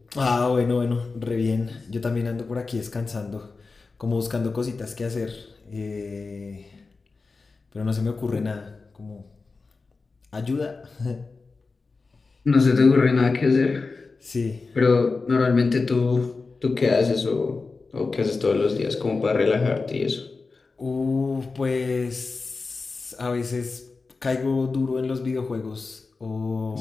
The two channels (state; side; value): quieter; right; 4.1 dB